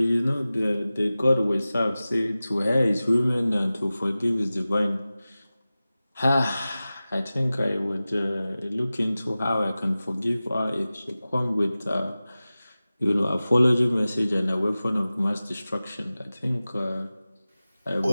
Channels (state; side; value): inverted; both; correlation -0.96